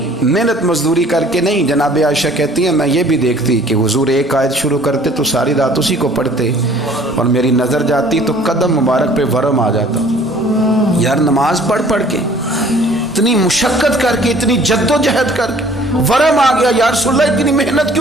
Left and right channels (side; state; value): both; normal; correlation 0.53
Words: محنت مزدوری کر کے نہیں، جناب عائشہ کہتی ہیں میں یہ بھی دیکھتی کہ حضور ایک آیت شروع کرتے تو ساری رات اسی کو پڑھتے، اور میری نظر جاتی تو قدم مبارک پہ ورم آ جاتا۔ یار نماز پڑھ کے اتنی مشقت کر کے، اتنی جد و جہد کر کے ورم آ گیا، یا رسول اللہ اتنی محنت